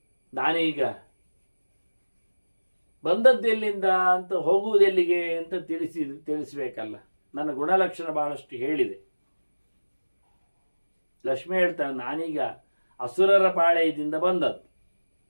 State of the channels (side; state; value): both; inverted; correlation -1.00